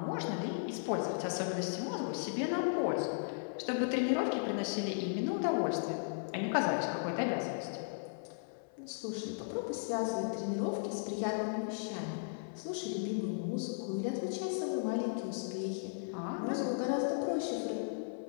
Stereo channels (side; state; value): right; silent; 54 dB below the other